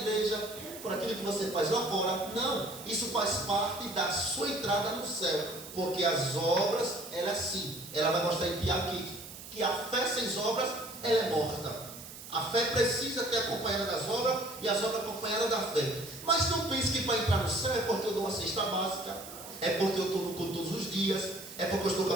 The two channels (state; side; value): noise; right; hiss, 14 dB below the sound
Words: por aquilo que você faz lá fora. Não, isso faz parte da sua entrada no céu, porque as obras, ela é assim, ela vai mostrar em ti aqui, que a fé sem obras, ela é morta. A fé precisa ter acompanhada das obras e as obras acompanhadas da fé. Mas não pense que para entrar no céu é porque eu dou uma cesta básica, é porque eu estou no culto todos os dias, é porque eu estou com